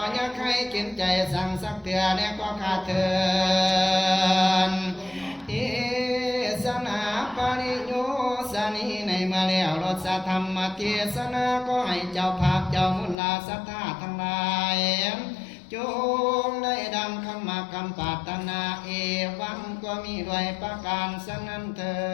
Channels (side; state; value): right; drops out; at 13.2 s